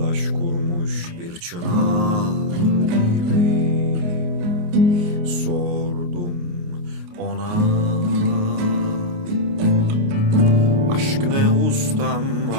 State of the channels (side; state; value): left; late; 28 ms